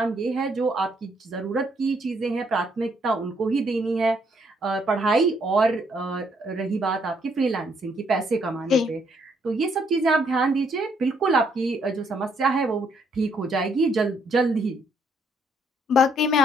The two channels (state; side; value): normal; both; correlation 0.70